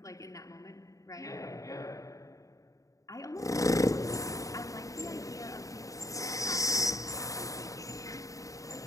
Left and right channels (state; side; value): late; right; 0.16 ms